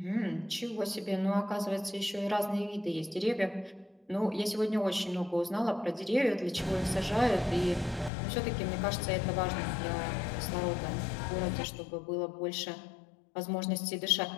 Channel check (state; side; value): drops out; right; at 8.1 s